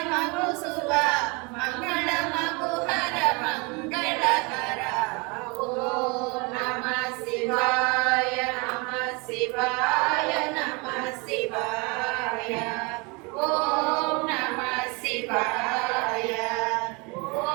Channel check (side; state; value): left; quieter; 29.3 dB